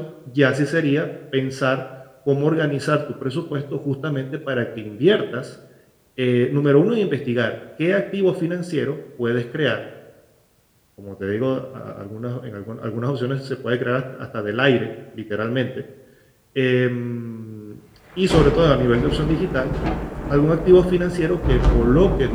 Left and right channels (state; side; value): identical; both; correlation 1.00